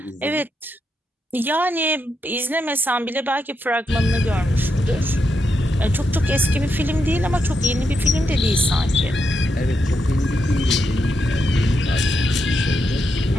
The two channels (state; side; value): normal; both; correlation 0.83